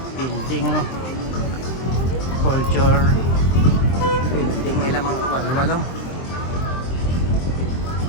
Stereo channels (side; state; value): right; late; 23 ms